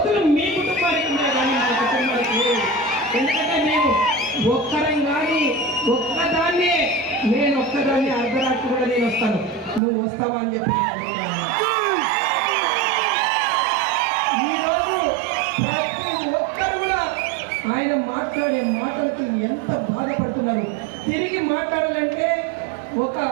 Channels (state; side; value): drops out; left; at 9.8 s